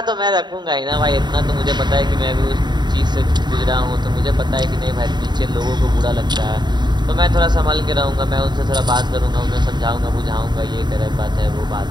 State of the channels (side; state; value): left; late; 0.21 ms